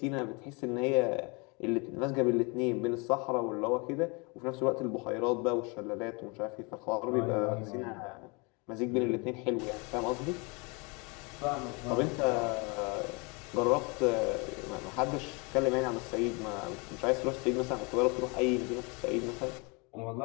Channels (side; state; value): right; quieter; 30.2 dB